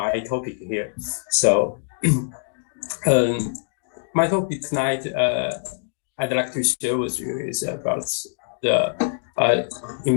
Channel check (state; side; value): silent; right; digital silence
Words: topic here. So my topic tonight I'd like to share with you is about the